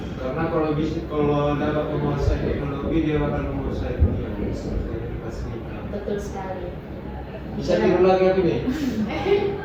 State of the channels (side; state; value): both; identical; correlation 1.00